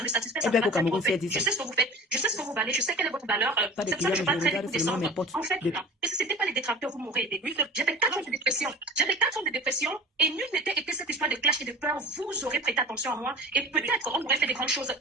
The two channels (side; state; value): both; normal; correlation 0.36